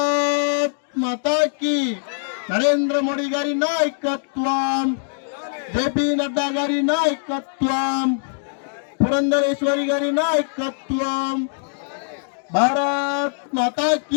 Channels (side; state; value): right; silent; digital silence